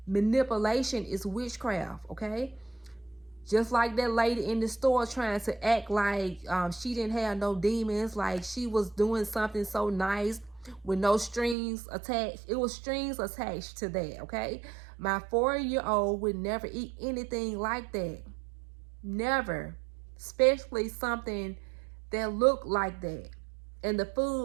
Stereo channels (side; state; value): left; drops out; at 11.6 s